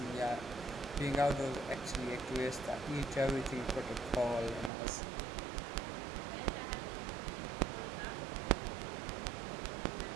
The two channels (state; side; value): drops out; left; at 4.7 s